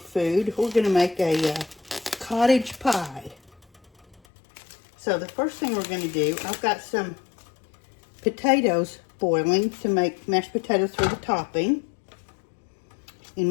food. We're going to make a cottage pie. So the first thing we're going to do, I've got some potatoes boiling to make mashed potatoes for the topping.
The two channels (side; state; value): right; drops out; at 4.2 s